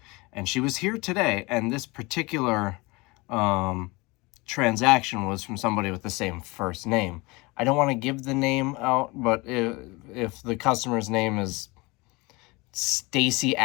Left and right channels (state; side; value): quieter; right; 24.5 dB